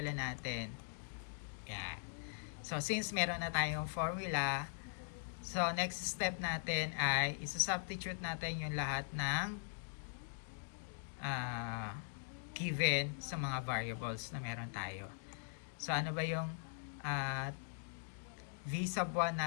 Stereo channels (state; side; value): silent; right; digital silence